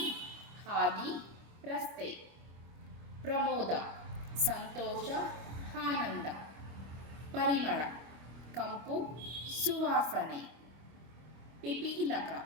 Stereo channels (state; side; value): late; left; 25 ms